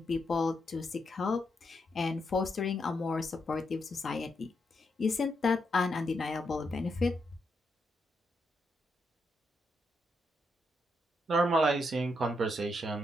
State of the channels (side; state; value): both; normal; correlation 0.81